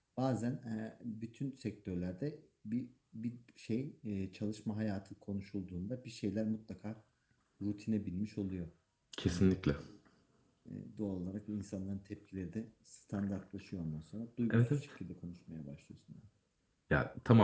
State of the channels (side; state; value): both; identical; correlation 1.00